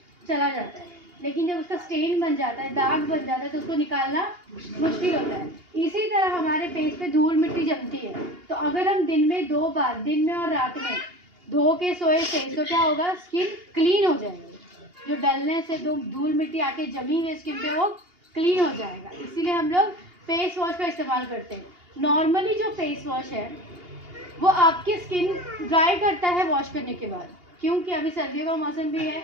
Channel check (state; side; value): late; left; 2.8 ms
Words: चला जाता है, लेकिन जब उसका स्टेन बन जाता है, दाग बन जाता है, तो उसको निकालना मुश्किल होता है। इसी तरह हमारे फेस पे धूल मिट्टी जमती है, तो अगर हम दिन में 2 बार, दिन में और रात में धो के सोए फेस, तो क्या होगा? स्किन क्लीन हो जाएगी। जो डलने से धूल मिट्टी आके जमी हुई स्किन पे वो क्लीन हो जाएगा। इसीलिए हम लोग फेस वॉश का इस्तेमाल करते हैं। नॉर्मली जो फेस वॉश है वो आपकी स्किन ड्राई करता है वॉश करने के बाद, क्योंकि अभी सर्दियों का मौसम भी है,